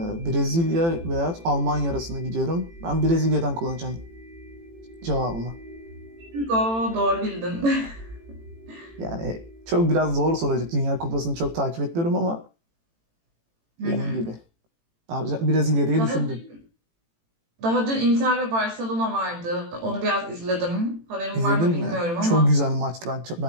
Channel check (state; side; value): late; left; 18 ms